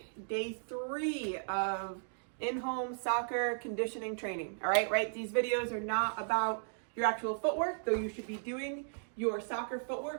day 3 of in-home soccer conditioning training. All right, these videos are not about your actual footwork, though you should be doing your soccer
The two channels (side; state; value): left; silent; digital silence